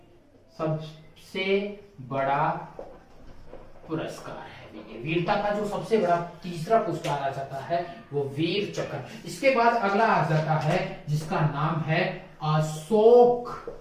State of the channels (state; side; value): identical; both; correlation 1.00